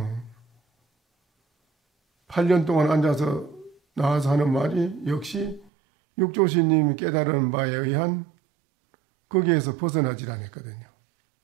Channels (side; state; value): left; drops out; at 5.7 s